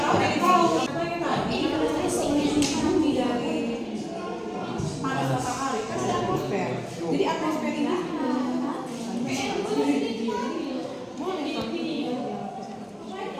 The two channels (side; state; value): both; identical; correlation 1.00